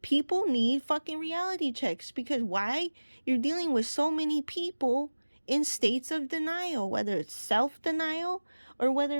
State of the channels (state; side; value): inverted; both; correlation -1.00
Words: People need fucking reality checks, because why? You're dealing with so many people in states of denial, whether it's self-denial or